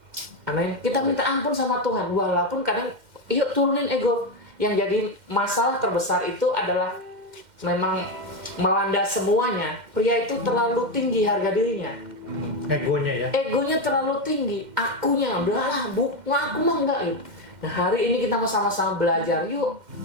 Amin. Kita minta ampun sama Tuhan. Walaupun kadang, yuk turunin ego. Yang jadi masalah terbesar itu adalah memang melanda semuanya. Pria itu terlalu tinggi harga dirinya. Egonya ya. Egonya terlalu tinggi. Akunya, udahlah, aku mah enggak gitu. Nah, hari ini kita mau sama-sama belajar. Yuk,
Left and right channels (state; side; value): late; left; 2.1 ms